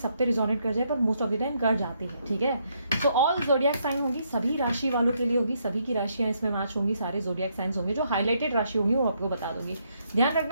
पे रिजोनेट कर जाए, पर मोस्ट ऑफ द टाइम कर जाती है। ठीक है, तो ऑल जोडियक साइन होगी, सभी राशि वालों के लिए होगी, सभी की राशियां इसमें मैच होंगी, सारे जोडियक साइंस होंगे। जो हाईलाइटेड राशि होंगी वो आपको बता दूंगी। ध्यान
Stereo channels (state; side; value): inverted; both; correlation -0.74